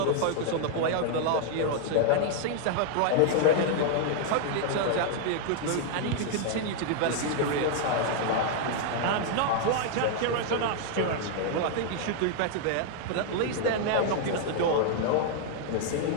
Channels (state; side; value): different; both; correlation 0.00